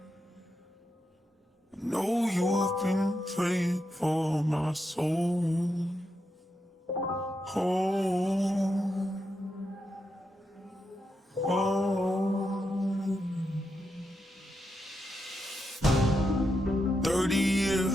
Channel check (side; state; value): both; normal; correlation 0.85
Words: I know you've been praying for my soul. Oh. 30